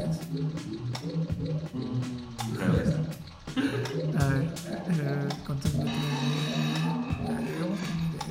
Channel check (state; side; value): identical; both; correlation 1.00